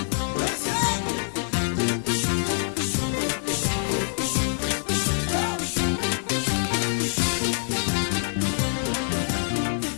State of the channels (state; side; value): silent; right; digital silence